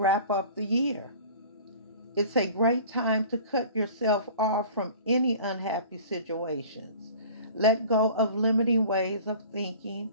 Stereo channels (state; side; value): inverted; both; correlation -0.44